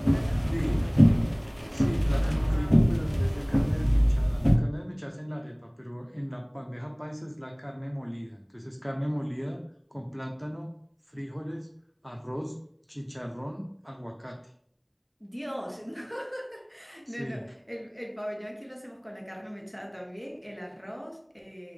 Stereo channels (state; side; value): identical; both; correlation 1.00